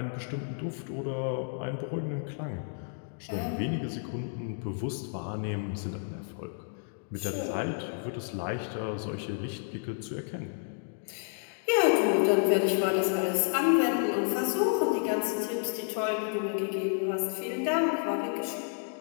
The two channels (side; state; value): right; silent; digital silence